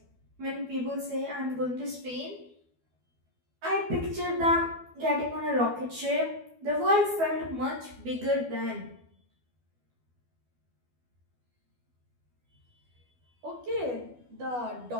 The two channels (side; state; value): left; late; 12 ms